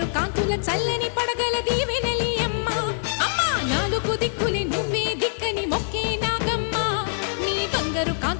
కాంతుల చల్లని పడగల దీవెనలి అమ్మ అమ్మా నాలుగు దిక్కులే నువ్వే దిక్కని మొక్కే నాగమ్మ నీ బంగారు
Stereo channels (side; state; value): right; silent; digital silence